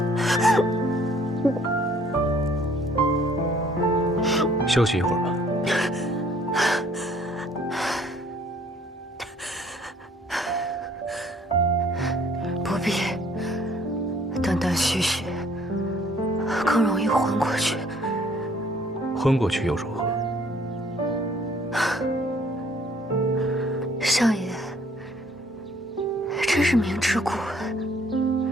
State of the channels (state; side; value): normal; both; correlation 0.60